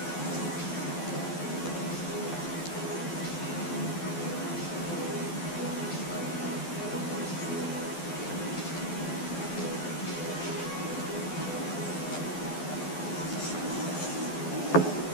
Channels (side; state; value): right; late; 12 ms